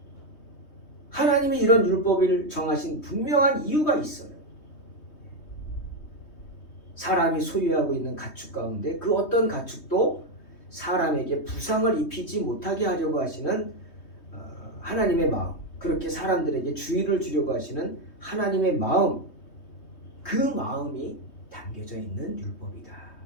하나님이 이런 율법을 정하신 분명한 이유가 있어요. 사람이 소유하고 있는 가축 가운데 그 어떤 가축도 사람에게 부상을 입히지 못하게 하려고 하시는 하나님의 마음, 그렇게 사람들에게 주의를 주려고 하시는 하나님의 마음, 그 마음이 담겨져 있는 율법이다.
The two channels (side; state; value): right; late; 3.2 ms